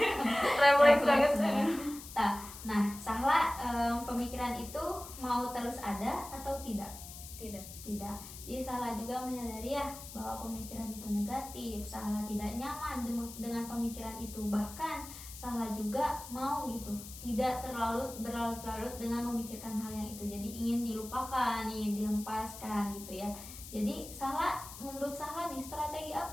refleks banget. Nah Sahla pemikiran itu mau terus ada atau tidak? Tidak. Jadi Sahla juga menyadari ya bahwa pemikiran itu negatif. Sahla tidak nyaman dengan pemikiran itu. Bahkan Sahla juga mau gitu, tidak terlalu berlarut-larut dengan memikirkan hal yang itu. Jadi ingin dilupakan, ingin dihempaskan gitu ya. Jadi Sahla, menurut Sahla nih, strategi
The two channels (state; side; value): noise; left; hiss, 13 dB below the sound